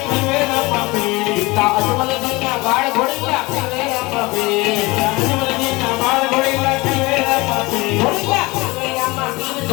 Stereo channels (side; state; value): right; quieter; 23.3 dB